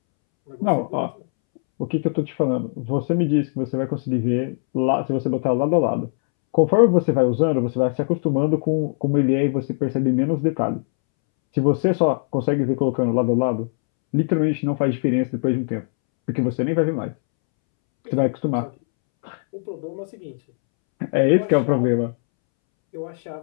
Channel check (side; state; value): right; silent; 65 dB below the other